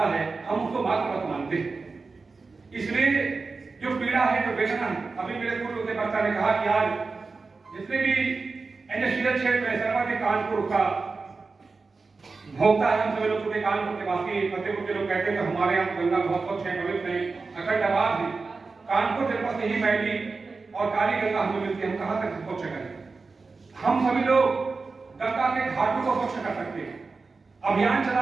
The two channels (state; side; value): quieter; left; 4.2 dB